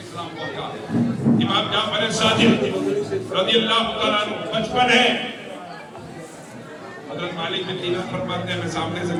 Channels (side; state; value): both; identical; correlation 1.00